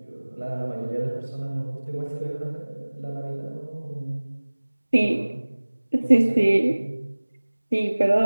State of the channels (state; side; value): inverted; both; correlation -1.00